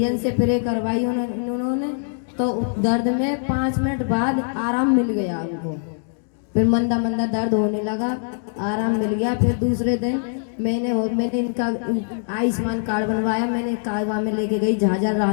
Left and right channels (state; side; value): silent; right; digital silence